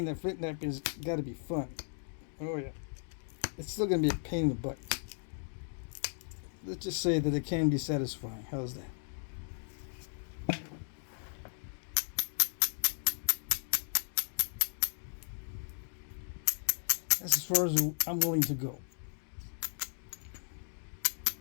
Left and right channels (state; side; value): silent; right; digital silence